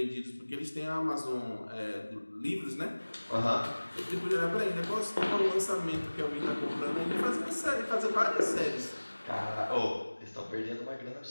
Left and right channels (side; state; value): both; inverted; correlation -1.00